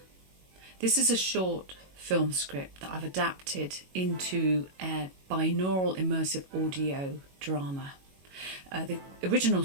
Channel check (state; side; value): late; left; 22 ms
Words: This is a short film script that I've adapted into a binaural immersive audio drama. The original